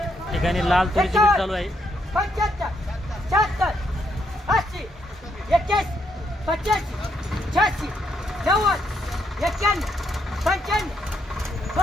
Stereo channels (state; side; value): normal; both; correlation 0.76